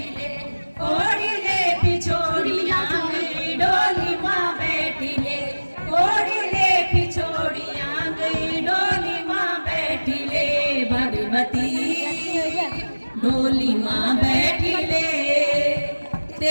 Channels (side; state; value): both; inverted; correlation -1.00